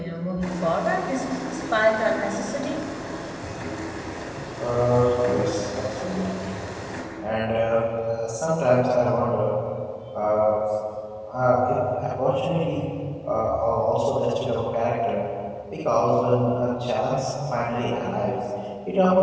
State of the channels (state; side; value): identical; both; correlation 1.00